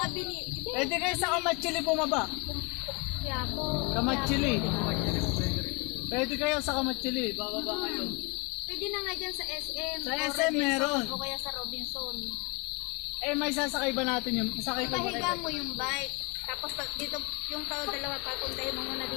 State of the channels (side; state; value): right; quieter; 29.8 dB